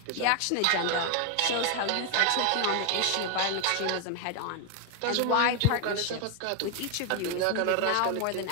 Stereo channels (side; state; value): both; different; correlation 0.01